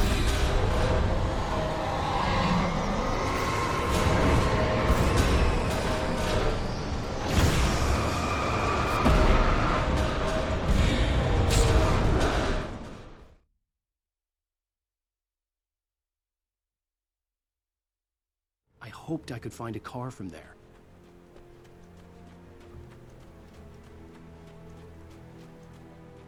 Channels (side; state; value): both; identical; correlation 1.00